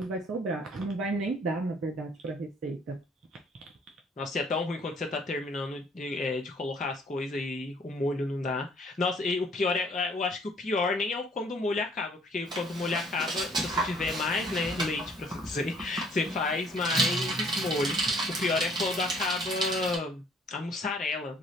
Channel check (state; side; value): normal; both; correlation 0.60